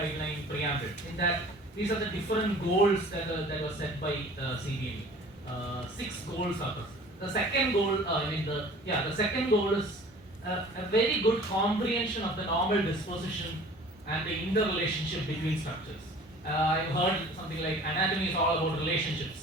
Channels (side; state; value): both; normal; correlation 0.46